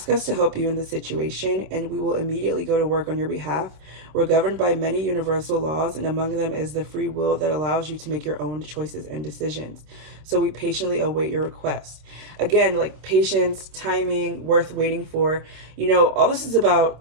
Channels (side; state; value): left; late; 26 ms